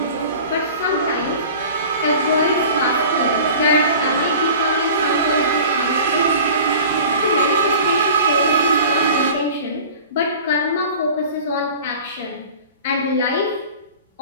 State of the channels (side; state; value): both; inverted; correlation -0.41